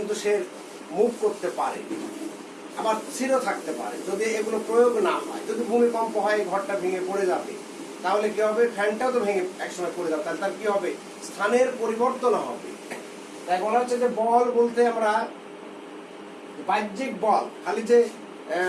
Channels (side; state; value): both; identical; correlation 1.00